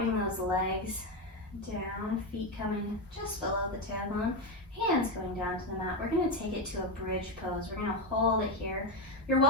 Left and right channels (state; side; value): normal; both; correlation 0.11